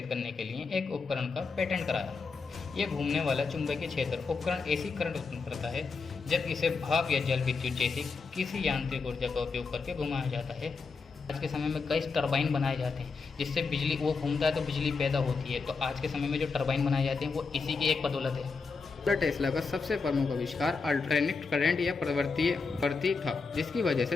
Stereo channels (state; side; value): quieter; right; 4.6 dB